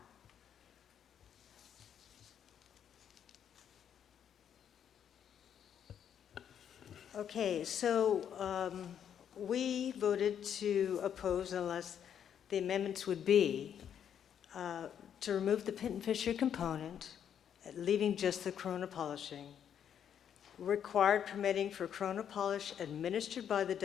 Okay, so we voted to oppose unless the amendments would be to remove the pin and fissure component, leaving just the corona polishing, required permitting for corona polish administered by the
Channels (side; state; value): right; quieter; 8.9 dB